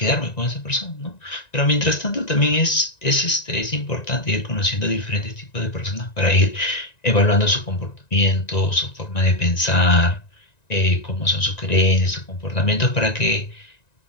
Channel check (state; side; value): late; right; 1.9 ms